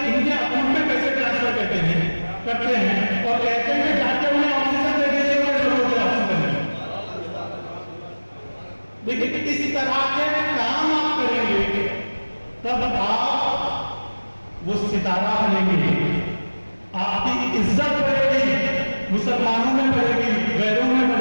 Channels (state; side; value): inverted; both; correlation -1.00